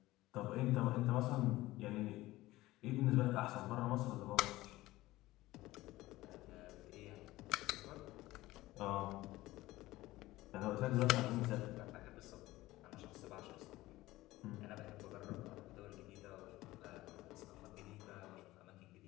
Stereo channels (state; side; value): quieter; right; 17.8 dB